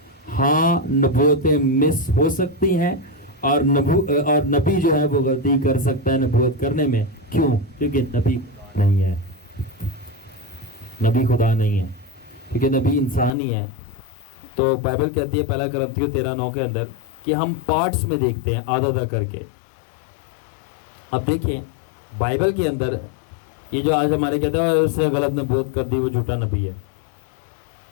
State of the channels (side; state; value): right; drops out; at 13.3 s